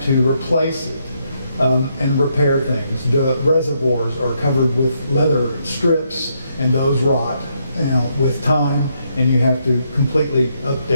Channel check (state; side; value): inverted; both; correlation -0.76